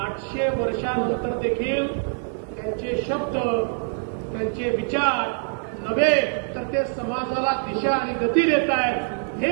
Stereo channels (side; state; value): left; silent; 62 dB below the other